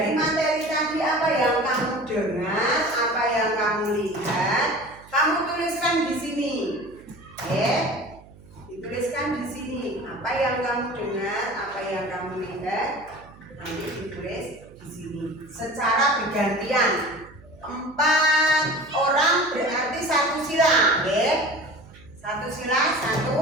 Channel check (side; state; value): right; noise; hum, 23 dB below the sound